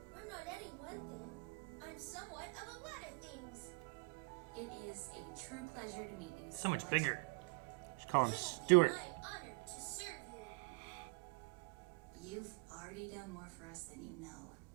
I'm not any one thing. I'm somewhat of a lot of things. It is a true pleasure to meet you. So much Scarlett. bigger. Just call him It will be Stuart. my honor to serve you. You've already done more for us than you know.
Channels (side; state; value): left; quieter; 27.3 dB